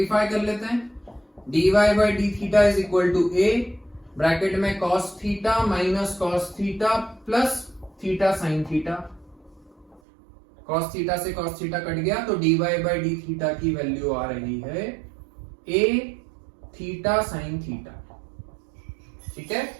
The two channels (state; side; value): drops out; left; at 10.0 s